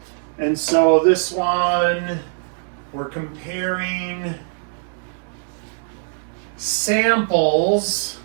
And so this one, we're comparing samples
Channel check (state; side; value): silent; left; digital silence